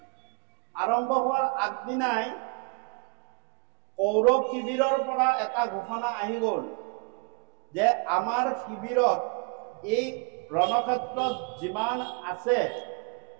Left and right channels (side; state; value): left; quieter; 31.7 dB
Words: আৰম্ভ হোৱাৰ আগদিনাই কৌৰৱ শিবিৰৰ পৰা এটা ঘোষণা আহি গ'ল যে আমাৰ শিবিৰত এই ৰণক্ষেত্ৰত যিমান আছে